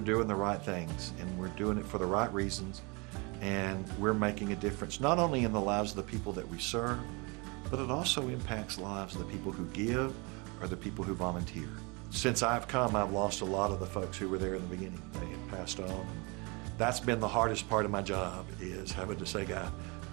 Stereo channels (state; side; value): quieter; left; 29.1 dB